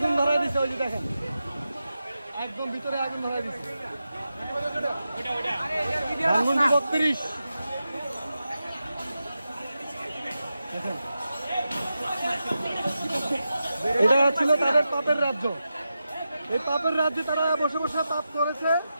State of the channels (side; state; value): both; inverted; correlation -0.90